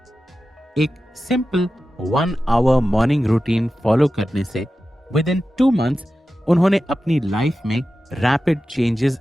एक simple 1 hour morning routine follow करने से विद इन 2 मंथ्स उन्होंने अपनी लाइफ में रैपिड चेंजेस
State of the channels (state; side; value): normal; both; correlation 0.93